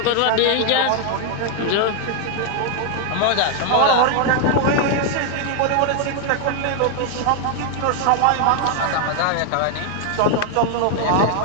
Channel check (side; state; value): both; different; correlation 0.00